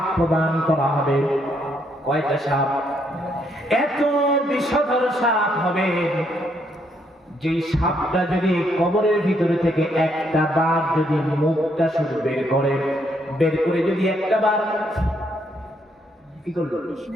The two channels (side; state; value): both; normal; correlation 0.73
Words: প্রদান করা হবে। কয়টা সাপ? এত বিষধর সাপ হবে যে সাপটা যদি কবরের ভিতরে থেকে একটা বার যদি মুখটা শুধু বের করে যদি একটা বার কি করলো,